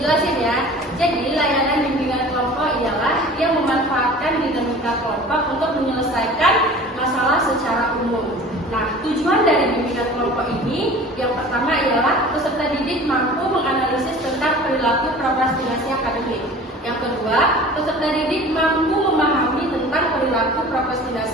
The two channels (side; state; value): both; normal; correlation 0.42